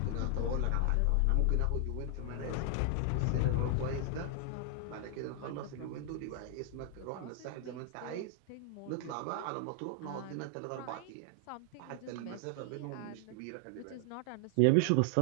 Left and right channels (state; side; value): different; both; correlation 0.00